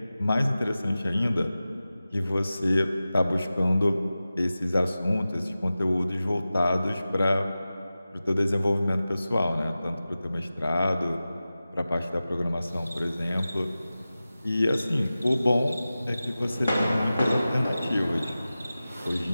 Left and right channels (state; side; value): inverted; both; correlation -0.95